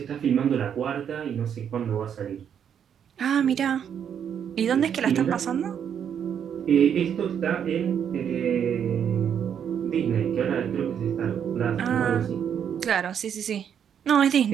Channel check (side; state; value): left; quieter; 8.4 dB